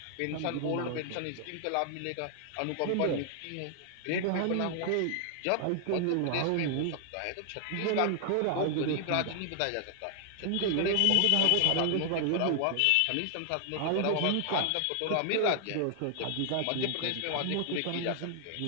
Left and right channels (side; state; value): both; different; correlation 0.00